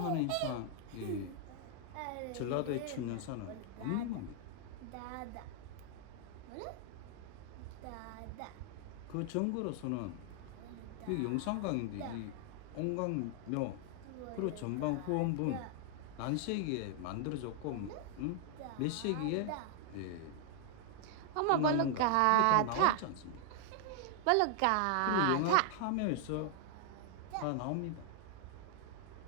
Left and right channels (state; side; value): different; both; correlation 0.00